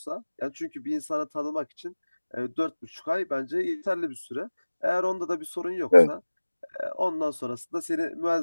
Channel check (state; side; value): inverted; both; correlation -1.00